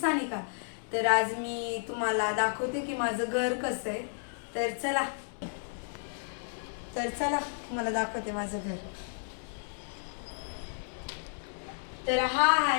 तर आज मी तुम्हाला दाखवते की माझं घर कसं आहे। तर चला तुम्हाला दाखवते माझं घर। तर हा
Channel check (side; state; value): right; silent; 56 dB below the other